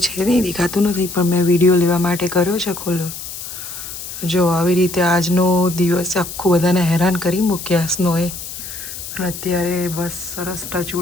નહીં દેખાતું નથી પણ મેં વિડીયો લેવા માટે કર્યો છે ખોલો જો આવી રીતે આજનો દિવસ આખું બધાને હેરાન કરી મૂક્યા સ્નોએ અને અત્યારે બસ સરસ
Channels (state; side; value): noise; left; hiss, 9 dB below the sound